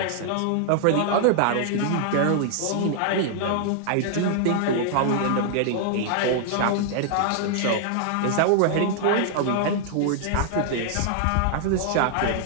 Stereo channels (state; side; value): different; both; correlation -0.01